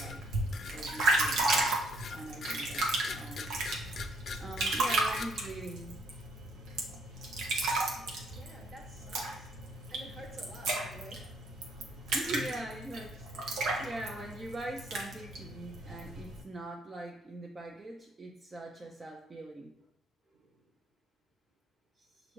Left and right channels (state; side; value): normal; both; correlation 0.67